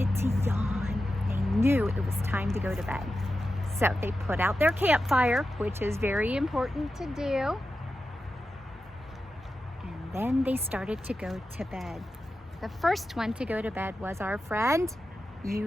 to yawn. They knew it was time to go to bed. So they put out their campfire, which is very important to do. And then they started to go to bed. The first one to go to bed was our friend,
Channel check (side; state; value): both; normal; correlation 0.91